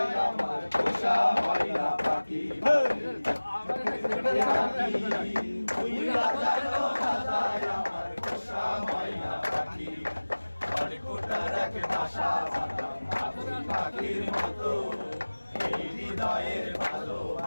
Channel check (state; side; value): inverted; both; correlation -1.00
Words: আমার পোষা ময়না পাখি উইরা জানো না যায় আমার পোষা ময়না পাখি খড়কুটার এক বাসা বানাম পাখির মতো এই হৃদয়ের